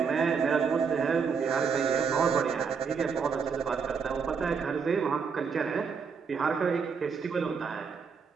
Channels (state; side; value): quieter; left; 5.9 dB